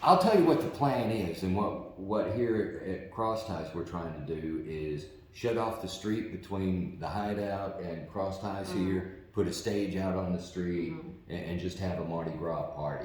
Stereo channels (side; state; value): both; identical; correlation 1.00